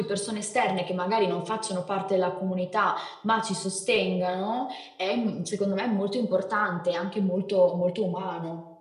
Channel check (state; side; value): identical; both; correlation 1.00